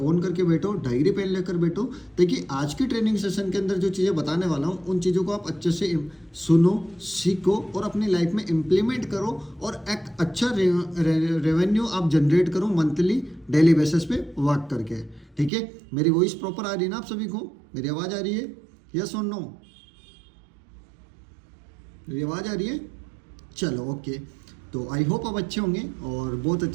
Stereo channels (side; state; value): left; drops out; at 15.5 s